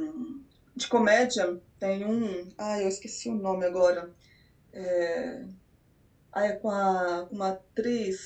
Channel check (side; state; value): both; identical; correlation 1.00